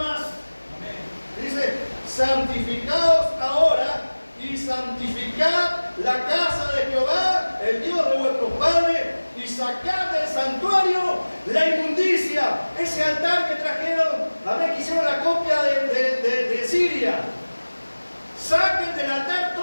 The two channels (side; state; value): both; inverted; correlation -1.00